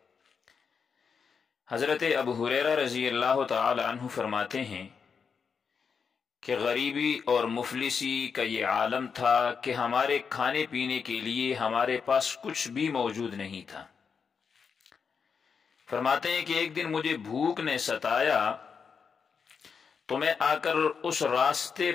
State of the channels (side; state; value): right; quieter; 6.0 dB